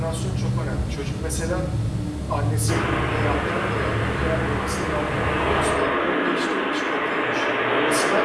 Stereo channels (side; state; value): both; identical; correlation 1.00